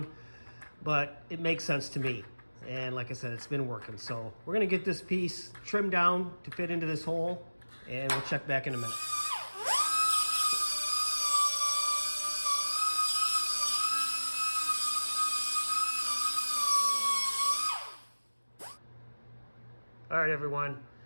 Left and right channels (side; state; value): both; inverted; correlation -1.00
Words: but it makes sense to me. And like I said, it's been working. So we're gonna get this piece trimmed down to fit into this hole, and we'll check back in a minute. All right, everyone.